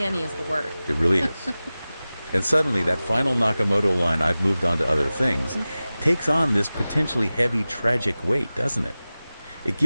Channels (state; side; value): inverted; both; correlation -0.97